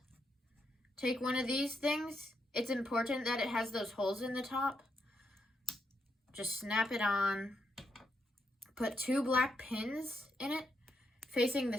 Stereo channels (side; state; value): both; normal; correlation 0.80